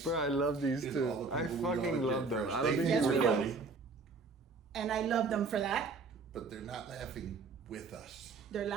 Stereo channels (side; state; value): left; quieter; 4.3 dB